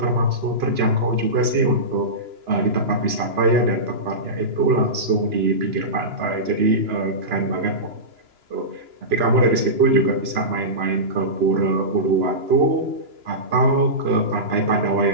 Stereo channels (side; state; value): left; late; 2.9 ms